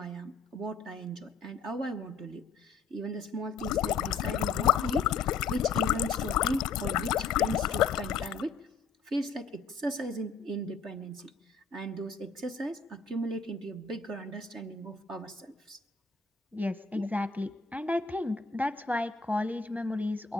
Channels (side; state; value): right; quieter; 4.7 dB